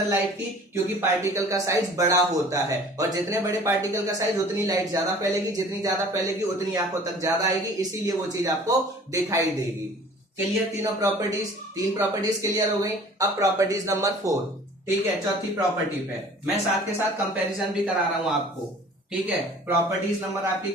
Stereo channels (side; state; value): both; normal; correlation 0.48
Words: लाइट की, क्योंकि पार्टिकल का साइज बड़ा होता है, और जितने बड़े पार्टिकल का साइज उतनी लाइट ज्यादा फैलेगी, जितनी ज्यादा फैलेगी उतनी आंखों तक ज्यादा आएगी, इसीलिए वो चीज आपको दिखाई देगी। क्लियर, तीनों प्रॉपर्टीज, तीन प्रॉपर्टीज क्लियर हो गई। अब प्रॉपर्टीज नंबर 4, ठीक है, चौथी प्रॉपर्टी पे मैं साथ के साथ कंपैरिजन भी करा रहा हूं आपको, ठीक है। प्रॉपर्टीज नंबर आपकी